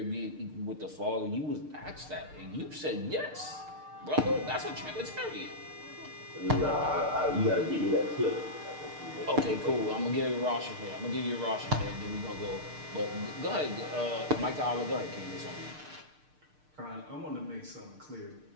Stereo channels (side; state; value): left; late; 6.6 ms